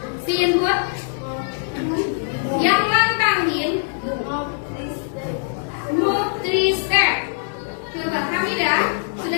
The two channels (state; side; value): silent; right; digital silence